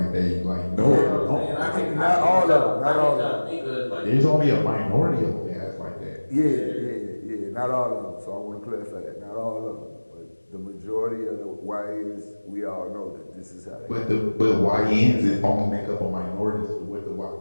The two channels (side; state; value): both; inverted; correlation -1.00